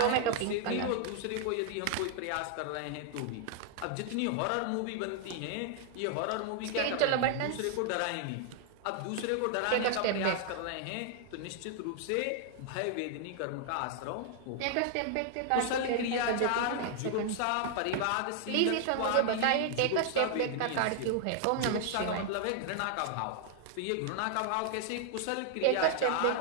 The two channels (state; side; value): different; both; correlation 0.00